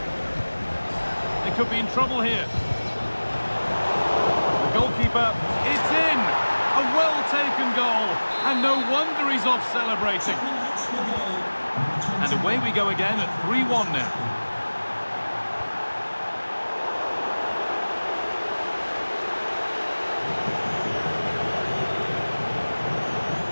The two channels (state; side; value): inverted; both; correlation -1.00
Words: They could be in trouble here. The goalkeeper, it's in! A well-taken goal, and no wonder he's off celebrating. And away we go again at 3-1 now.